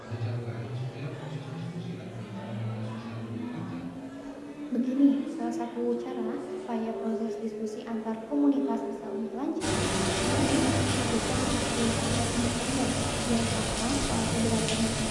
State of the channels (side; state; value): both; identical; correlation 1.00